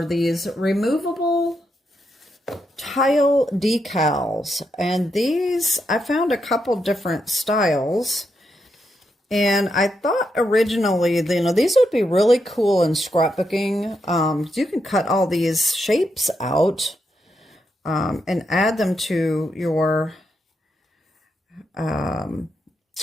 these removable tile decals, and these I found a couple different styles, and I thought originally, these would be really cool in scrapbooking. You can cut all these shapes out and add them to your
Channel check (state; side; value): normal; both; correlation 0.82